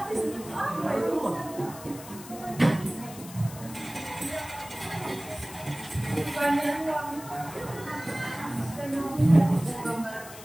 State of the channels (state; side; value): noise; left; hiss, 15 dB below the sound